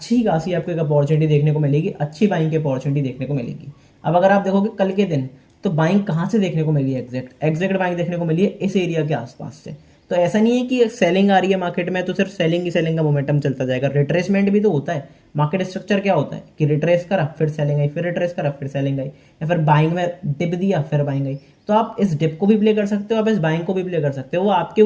खासी आपको एक अपॉर्चुनिटी देखने को मिलेगी, अच्छी बाइंग की अपॉर्चुनिटी देखने को मिलेगी। अब अगर आप देखोगे कल के दिन, तो बाइंग कहाँ से देखने को मिली है, एग्जैक्ट बाइंग देखने को मिली है इस एरिया के आसपास से। तो ऐसा नहीं है कि सेलिंग आ रही है मार्केट में तो सिर्फ सेलिंग ही सेलिंग का मोमेंटम चलता जाएगा, रिट्रेसमेंट भी तो होता है। मार्केट स्ट्रक्चर क्या होता है कि रिट्रेस करा फिर सेलिंग आई, फिर रिट्रेस करा फिर सेलिंग आई, या फिर बाइंग में डिप दिया फिर बाइंग आई। तो आप इस डिप को भी प्ले कर सकते हो, आप इस बाइंग को भी प्ले कर सकते हो, वो आपके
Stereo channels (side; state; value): both; identical; correlation 1.00